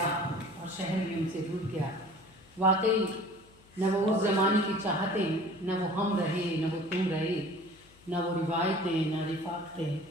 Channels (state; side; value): noise; left; hum, 27 dB below the sound